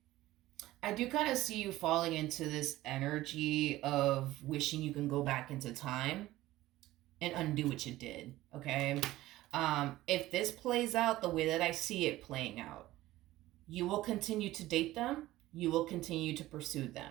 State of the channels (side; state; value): left; quieter; 16.5 dB